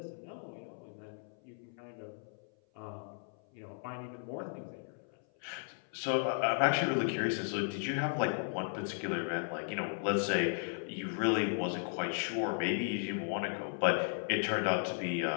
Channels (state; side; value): silent; right; 54 dB below the other